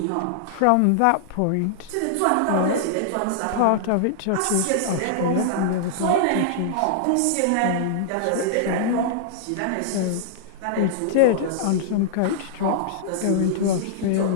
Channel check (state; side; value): different; both; correlation -0.01